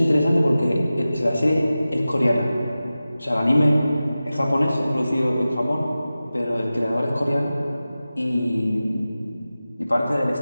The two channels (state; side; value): inverted; both; correlation -0.95